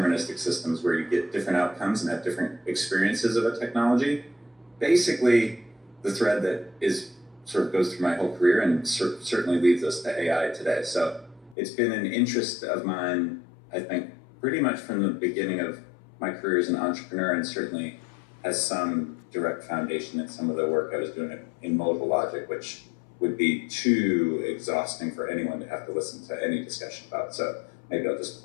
systems where you get different outcomes and have different experiences of a technology, basically the thread that sort of goes through my whole career and certainly leads us to AI today. So it's been an interest of mine, I think, pretty much from the beginning of my career as an entrepreneur, and certainly has some direct foundation in some of the work I was doing in modal logic, which would be too exhausting for anyone to have to listen to any discussion about. So maybe I'll just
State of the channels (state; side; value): drops out; right; at 11.6 s